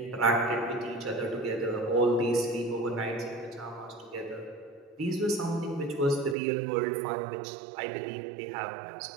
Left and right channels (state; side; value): drops out; left; at 6.4 s